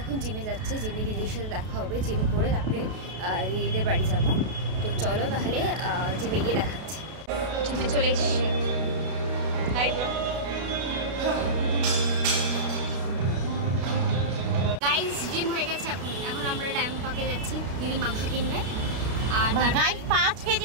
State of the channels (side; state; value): left; late; 32 ms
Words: জিমে যাচ্ছি, জিমে দিদির সাথে দেখা হবে। জিম করে তারপরে দিদিদের বাড়ি যাবো। তো চলো তাহলে জিমে গিয়ে দেখাচ্ছি। জিমে চলে এসছি। Hi bro. গাইস জিম হয়ে গেছে, এখন আমরা ডায়মন্ড পার্কে যাচ্ছি। দিদি মাংস কিনবে আর গাইস 5